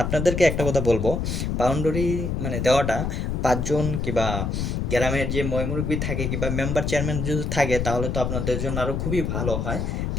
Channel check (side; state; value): left; noise; rumble, 1 dB below the sound